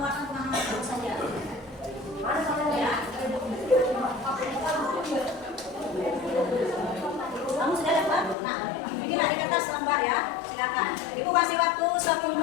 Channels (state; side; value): drops out; right; at 8.3 s